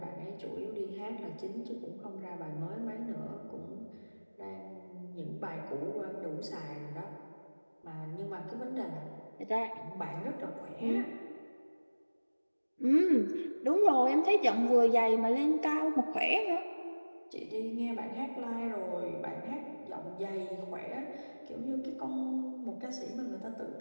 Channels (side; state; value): both; inverted; correlation -1.00